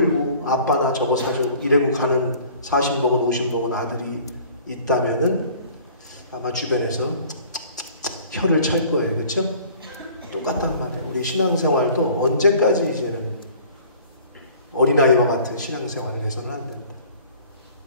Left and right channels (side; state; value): both; inverted; correlation -0.50